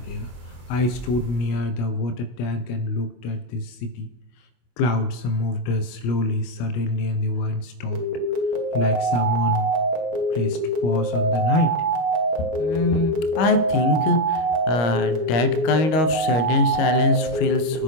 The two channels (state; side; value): late; right; 25 ms